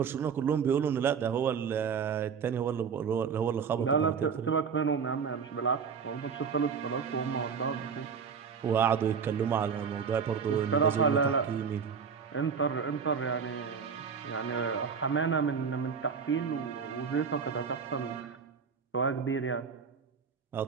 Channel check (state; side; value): quieter; left; 6.3 dB